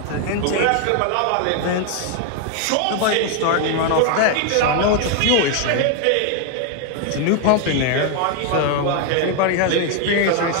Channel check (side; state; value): both; different; correlation 0.01